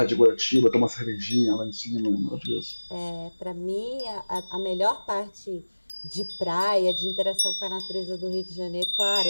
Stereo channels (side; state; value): both; inverted; correlation -1.00